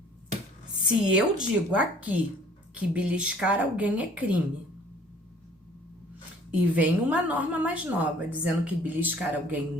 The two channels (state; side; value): normal; both; correlation 0.54